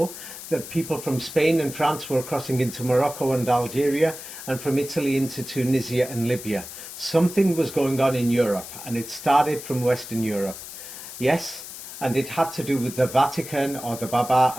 that people from Spain and France were crossing into Morocco and Algeria, and from Italy into Tunisia and Libya. Something was going on in Europe, and it started from Western Europe. Yes, and it had to do with the Vatican, or the Baba,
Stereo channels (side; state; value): left; noise; hiss, 12 dB below the sound